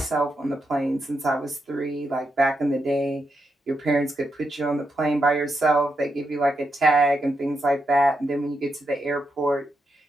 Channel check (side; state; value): both; normal; correlation 0.84